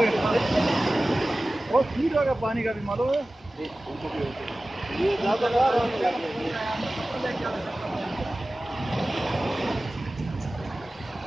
बहुत स्पीड होगा पानी का भी मालूम है।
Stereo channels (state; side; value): normal; both; correlation 0.97